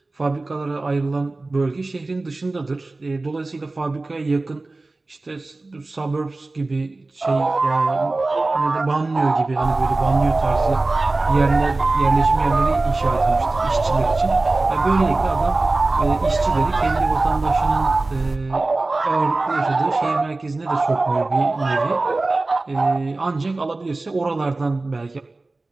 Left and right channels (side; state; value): left; quieter; 3.2 dB